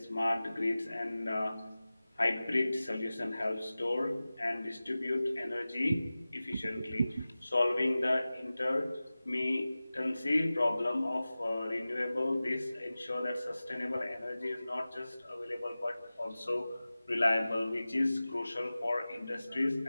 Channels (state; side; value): inverted; both; correlation -0.97